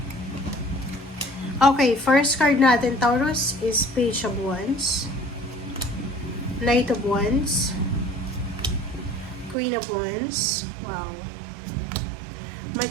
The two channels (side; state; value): left; drops out; at 9.6 s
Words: Okay, first card natin, Taurus, is Page of Wands, Knight of Wands, Queen of Wands, wow,